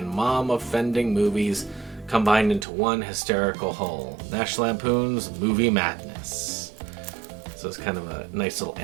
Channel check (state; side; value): drops out; left; at 2.7 s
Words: mom-offending movies combined into one hysterical whole. National Lampoon's Movie Madness. So it's kind of a nice little